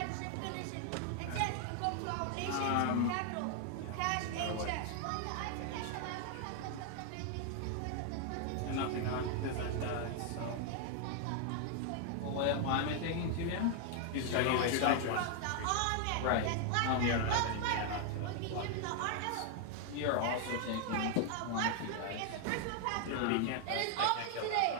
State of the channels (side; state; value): both; different; correlation 0.00